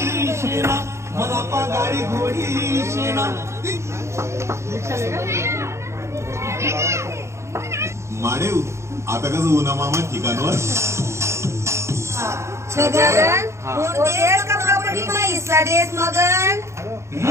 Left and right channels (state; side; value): late; left; 0.14 ms